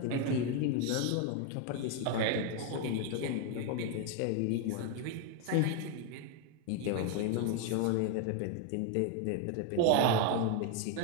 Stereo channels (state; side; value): different; both; correlation 0.01